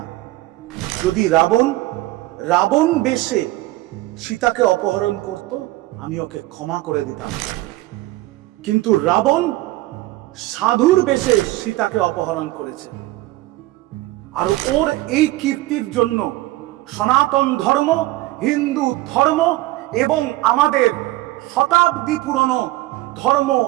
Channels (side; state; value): left; quieter; 18.0 dB